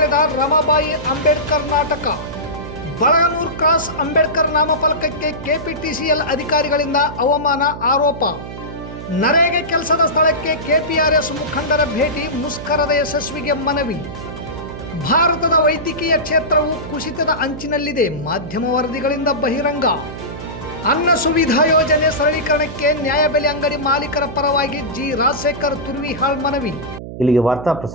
ರಮಾಬಾಯಿ ಅಂಬೇಡ್ಕರ್ ನಾಟಕ. ಬಳಗನೂರು ಕ್ರಾಸ್ ಅಂಬೇಡ್ಕರ್ ನಾಮಫಲಕಕ್ಕೆ ಕೆಪಿಟಿಸಿಎಲ್ ಅಧಿಕಾರಿಗಳಿಂದ ಅವಮಾನ ಆರೋಪ. ನರೇಗೆ ಕೆಲಸದ ಸ್ಥಳಕ್ಕೆ ಕೆಪಿಆರ್ಎಸ್ ಮುಖಂಡರ ಭೇಟಿ, ಮುಷ್ಕರದ ಯಶಸ್ವಿಗೆ ಮನವಿ. ಭಾರತದ ವೈದ್ಯಕೀಯ ಕ್ಷೇತ್ರವು ಕುಸಿತದ ಅಂಚಿನಲ್ಲಿದೆ, ಮಾಧ್ಯಮ ವರದಿಗಳಿಂದ ಬಹಿರಂಗ. ಅನ್ನ ಸುವಿಧಾ ಯೋಜನೆ ಸರಳೀಕರಣಕ್ಕೆ ನ್ಯಾಯಬೆಲೆ ಅಂಗಡಿ ಮಾಲೀಕರ ಪರವಾಗಿ ಜಿ ರಾಜಶೇಖರ್ ತುರ್ವಿಹಾಳ್ ಮನವಿ. ಇಲ್ಲಿಗೆ ವಾರ್ತಾ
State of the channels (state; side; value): noise; right; hum, 10 dB below the sound